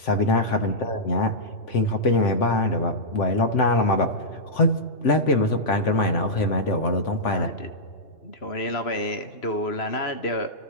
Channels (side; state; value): right; late; 3.5 ms